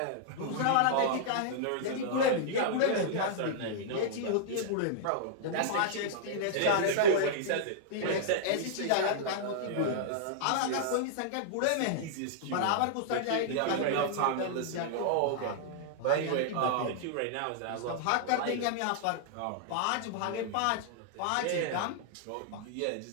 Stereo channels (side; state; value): both; different; correlation -0.01